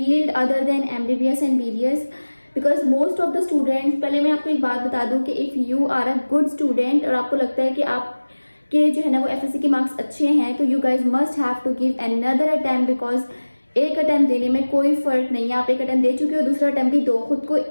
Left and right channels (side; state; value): both; inverted; correlation -1.00